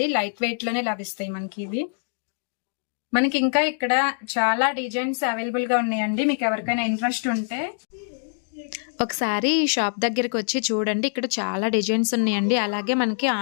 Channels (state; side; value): silent; right; digital silence